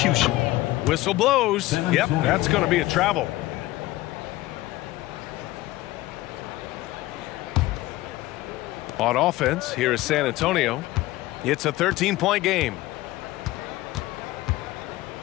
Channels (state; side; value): quieter; right; 17.7 dB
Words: Whistle blows. Yep, that's going to be a travel. On offense, here is San Antonio. It's a 13-point game.